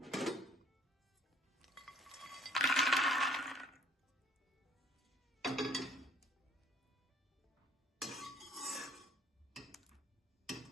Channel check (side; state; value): both; normal; correlation 0.57